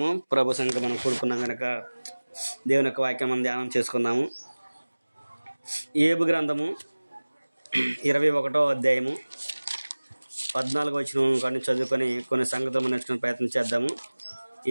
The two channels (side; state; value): both; inverted; correlation -1.00